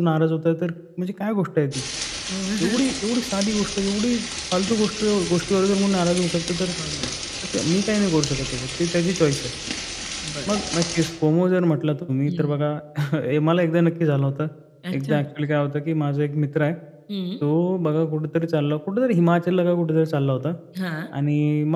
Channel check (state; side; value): identical; both; correlation 1.00